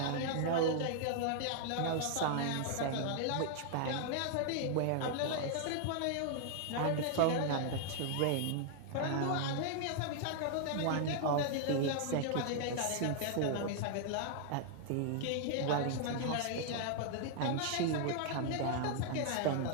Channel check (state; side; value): different; both; correlation 0.00